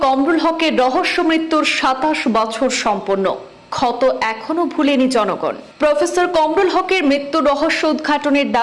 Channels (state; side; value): identical; both; correlation 1.00